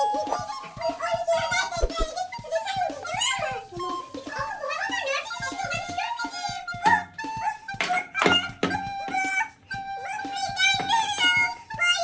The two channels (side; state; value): both; identical; correlation 1.00